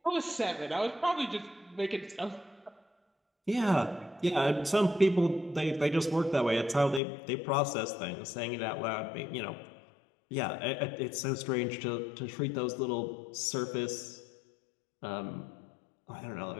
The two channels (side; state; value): right; drops out; at 7.0 s